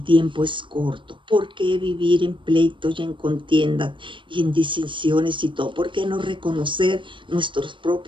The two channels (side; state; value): left; late; 0.24 ms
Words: tiempo es corto. ¿Por qué vivir en pleitos y en contiendas y en distinciones y todo? ¿Por qué no reconocer nuestros